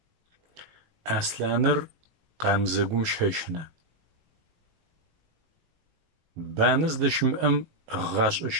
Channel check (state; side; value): late; left; 19 ms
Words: Аслъаныр къамзэгум щэщнэ. Банэ здэщымыӏэм гъашӏэ